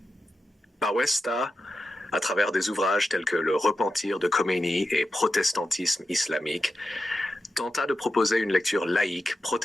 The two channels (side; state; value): both; normal; correlation 0.90